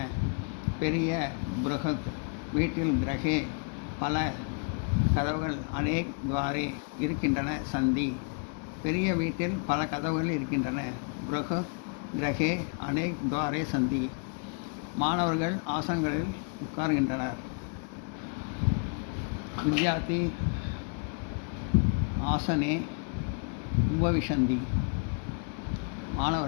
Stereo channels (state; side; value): quieter; right; 38.9 dB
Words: பெரிய பிருகத். வீட்டில் கிரகே பல கதவுகள் அநேக் துவாரே இருக்கின்றன சந்தி. பெரிய வீட்டில் பல கதவுகள் இருக்கின்றன. பிருகத் கிரகே அநேக் துவாரே சந்தி. மாணவர்கள் ஆசனங்களில் உட்கார்கின்றனர். வித்யார்த்தி ஆசனே உபவிஷந்தி.